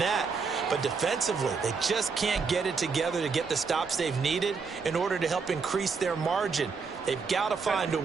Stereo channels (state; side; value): quieter; left; 5.1 dB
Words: But defensively, they just can't get it together to get the stops they've needed in order to help increase their margin. They've got to find a